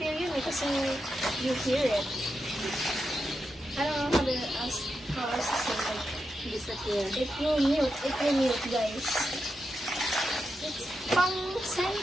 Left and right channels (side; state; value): both; normal; correlation 0.87